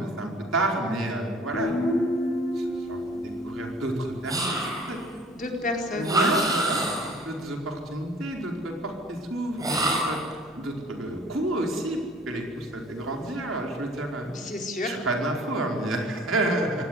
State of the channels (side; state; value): both; normal; correlation 0.50